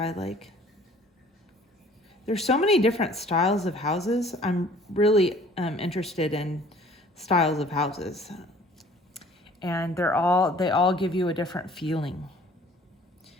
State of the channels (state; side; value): normal; both; correlation 0.53